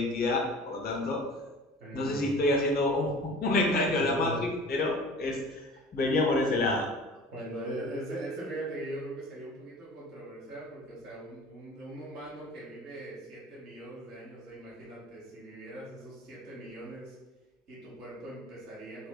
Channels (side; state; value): both; normal; correlation 0.43